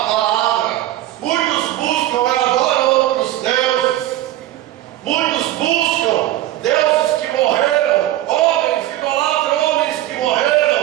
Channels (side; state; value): left; quieter; 14.3 dB